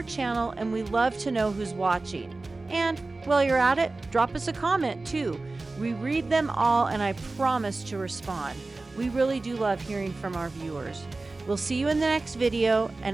channel, and we love to know who's watching. And while you're at it, drop us a comment too. We read them all, and I promise to respond. We really do love hearing from our viewers. We'll see you in the next video,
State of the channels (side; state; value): left; quieter; 3.4 dB